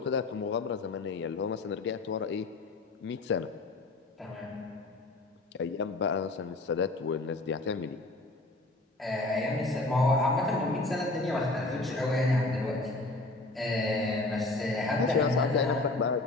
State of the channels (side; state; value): right; quieter; 3.0 dB